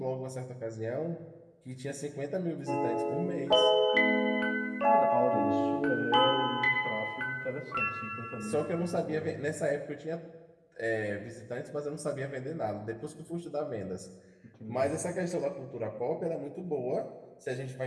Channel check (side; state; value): both; identical; correlation 1.00